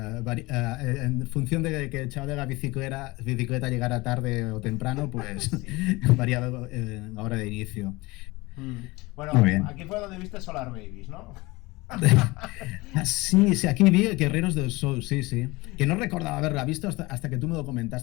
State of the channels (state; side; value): quieter; right; 22.4 dB